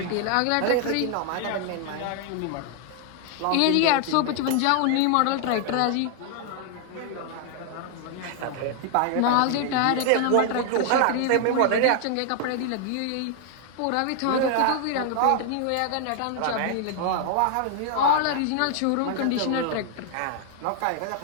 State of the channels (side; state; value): both; different; correlation 0.00